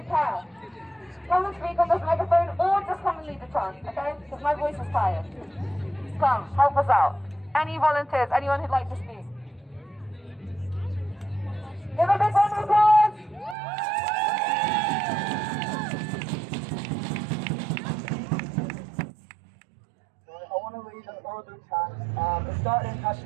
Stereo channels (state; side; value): drops out; left; at 13.6 s